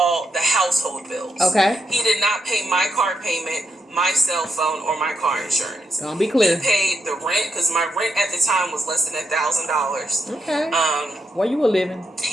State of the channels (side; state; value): both; normal; correlation 0.81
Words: the household bills. Okay. He did not pay my car payment, my cell phone, or my car insurance. I'll be clear. He paid the rent because my rent at the time was less than $1,000. Okay. Where you were living?